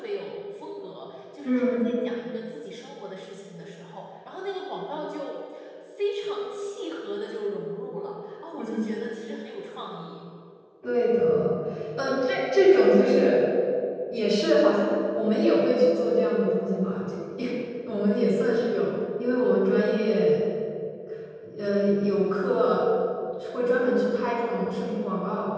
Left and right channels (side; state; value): both; identical; correlation 1.00